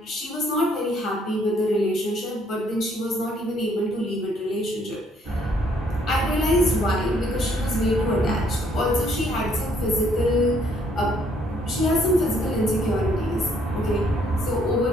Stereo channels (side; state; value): both; normal; correlation 0.67